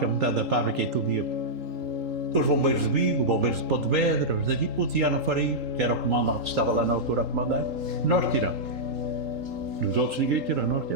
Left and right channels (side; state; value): left; late; 3.8 ms